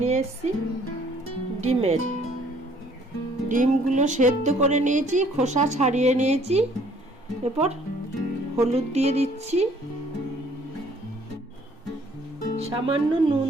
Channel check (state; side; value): normal; both; correlation 0.59